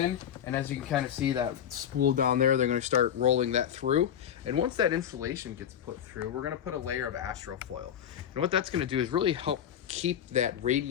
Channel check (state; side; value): quieter; right; 9.5 dB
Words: and as you can kind of see that spool down there, they're going to start rolling that through. And once that insulation gets put through, we're going to put a layer of astrofoil. And what that's going to do is really help keep that